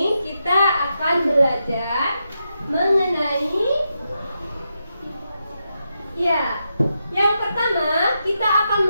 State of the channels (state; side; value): inverted; both; correlation -0.85